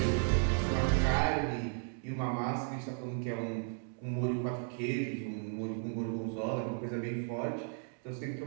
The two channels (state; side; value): silent; left; 55 dB below the other